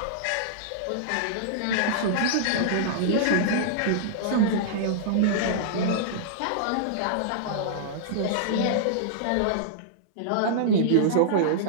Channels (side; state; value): both; different; correlation -0.02